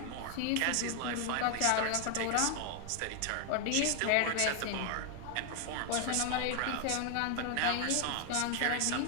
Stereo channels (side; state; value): both; different; correlation 0.01